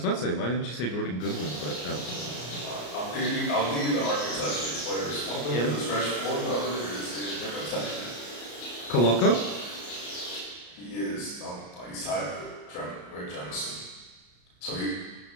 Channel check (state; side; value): late; right; 34 ms